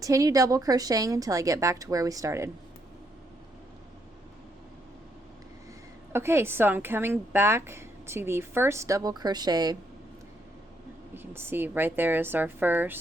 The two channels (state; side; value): normal; both; correlation 0.75